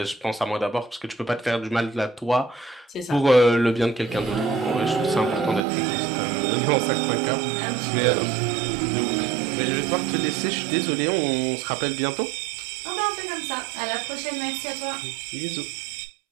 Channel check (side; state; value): left; drops out; at 5.6 s